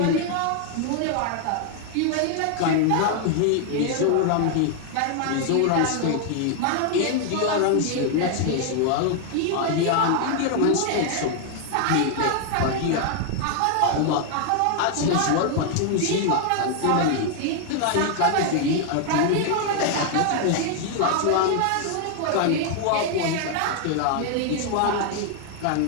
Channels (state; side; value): different; both; correlation 0.00